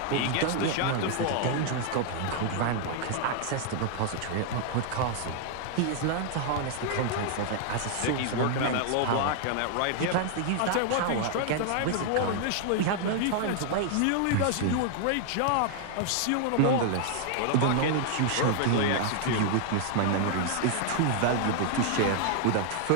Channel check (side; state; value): both; different; correlation 0.00